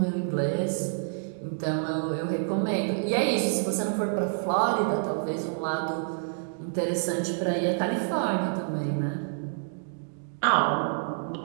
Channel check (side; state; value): left; silent; digital silence